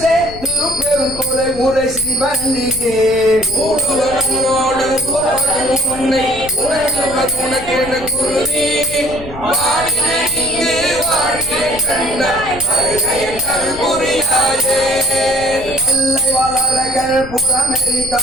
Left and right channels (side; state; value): left; noise; rumble, 14 dB below the sound